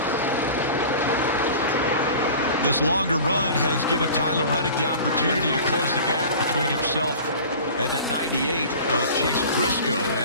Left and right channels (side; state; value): both; inverted; correlation -0.40